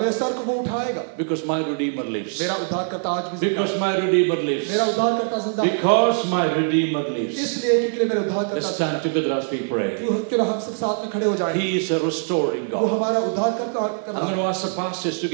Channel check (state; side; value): silent; left; 64 dB below the other